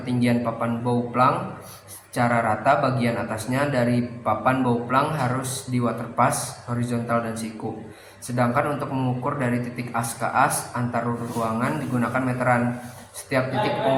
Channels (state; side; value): identical; both; correlation 1.00